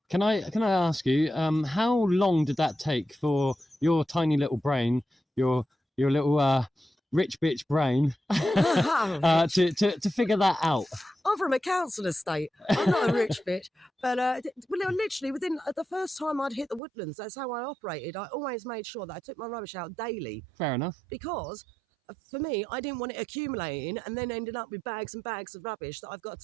Can I ask you, how long did that take for your tiny little brain, your little rich bitch brain, to figure that out? I'm from a council estate. I'm not a rich bitch. But literally within the first time I'd hit the woodlands, that's how I operated. I always made sure that I took my rubbish out daily. Fair enough. Because for me, I didn't want it accumulating and then ending up with bags and bags of rubbish that I've got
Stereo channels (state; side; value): drops out; left; at 16.8 s